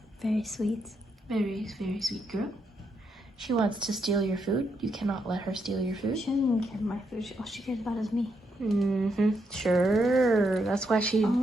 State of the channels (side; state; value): both; normal; correlation 0.79